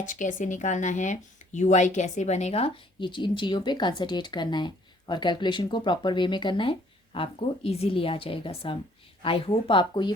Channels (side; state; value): both; normal; correlation 0.60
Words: कैसे निकालना है, यूआई कैसे बनेगा, ये इन चीज़ों पे कंसंट्रेट करना है, और कैलकुलेशन को प्रॉपर वे में करना है, आपको इजीली आ जाएगा सम। आई होप आपको ये